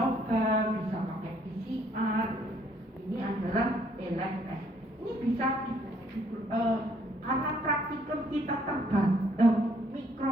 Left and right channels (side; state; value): both; normal; correlation 0.65